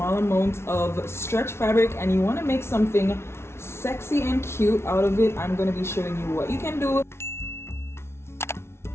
amount of stretch fabric and you want to make something sexy and cute out of it, I'm going to be showing you what you can do.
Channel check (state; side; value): late; right; 0.12 ms